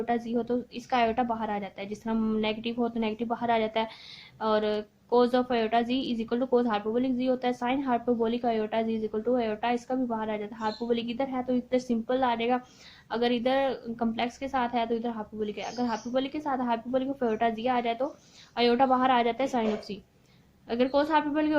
जी हो तो इसका आयोटा बाहर आ जाता है। जिस तरह नेगेटिव हो तो नेगेटिव बाहर आ जाता है, और cos of iota z is equal to cos hyperbolic z होता है। Sine hyperbolic iota z is equal to iota, इसका भी बाहर आ जाता है। हाइपरबोलिक इधर है तो इधर सिंपल आ जाएगा, अगर इधर कम्प्लेक्स के साथ है तो इधर हाइपरबोलिक है। अगर हाइपरबोलिक के साथ हाइपरबोलिक ऑफ आयोटा जी आ जाए तो आयोटा बाहर आ जाता है साइन ऑफ सी। अगर कोस हाइपरबोलिक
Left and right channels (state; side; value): identical; both; correlation 1.00